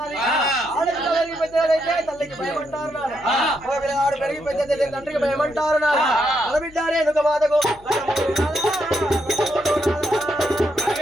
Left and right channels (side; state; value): left; noise; hum, 25 dB below the sound